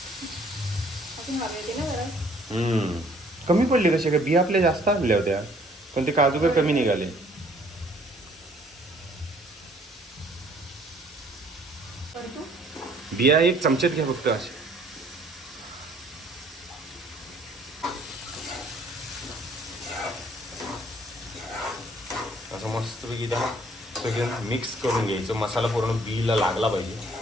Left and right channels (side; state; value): both; normal; correlation 0.60